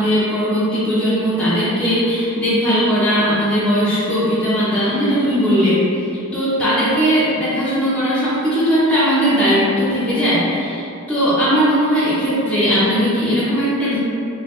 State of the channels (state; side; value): normal; both; correlation 0.41